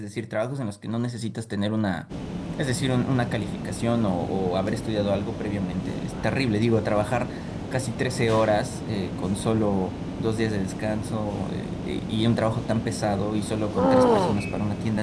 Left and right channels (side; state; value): both; identical; correlation 1.00